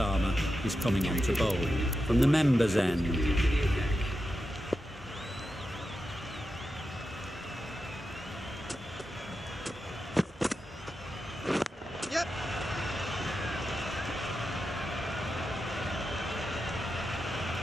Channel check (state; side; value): normal; both; correlation 0.89